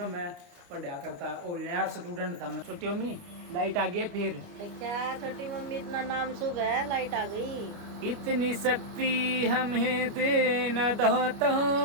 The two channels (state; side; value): late; left; 29 ms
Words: मैं पढ़ा करता और नया स्टूडेंट था मैं छोटी अम्मी लाइट आ गई है फिर। क्या छोटी मम्मी इतना नाम शुभ है, लाइट आ गई। इतनी शक्ति हमें दे न दाता,